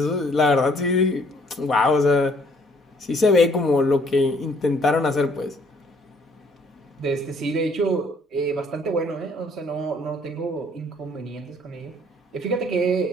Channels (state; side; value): normal; both; correlation 0.62